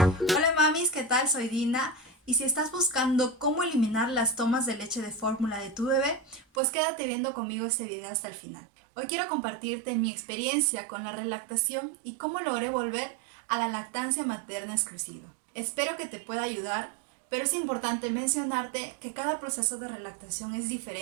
mamis, ¿qué tal? Soy Dina y si estás buscando cómo eliminar las tomas de leche de fórmula de tu bebé, pues quédate viendo conmigo este video hasta el final. Hoy quiero compartirte mi experiencia con la relactación y cómo logré volver a la lactancia materna exclusiva. Espero que te pueda ayudar, pero es importante mencionarte que cada proceso de relactación es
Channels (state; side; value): drops out; left; at 6.6 s